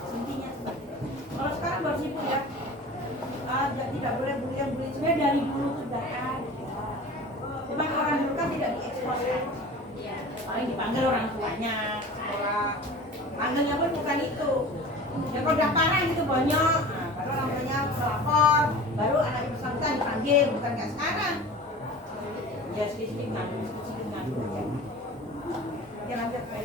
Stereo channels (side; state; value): both; normal; correlation 0.38